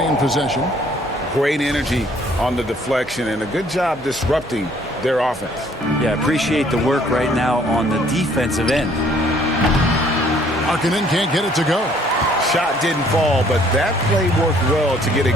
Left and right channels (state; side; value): normal; both; correlation 0.61